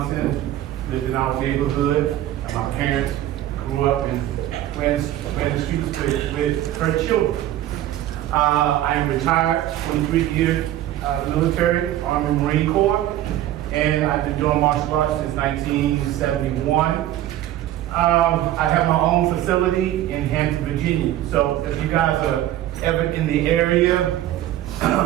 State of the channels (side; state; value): left; quieter; 13.4 dB